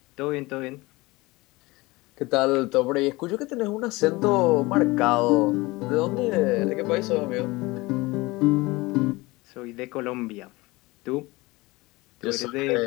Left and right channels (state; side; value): quieter; right; 22.0 dB